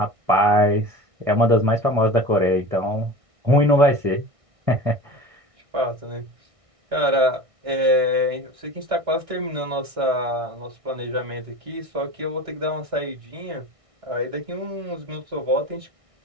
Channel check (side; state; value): left; late; 1.6 ms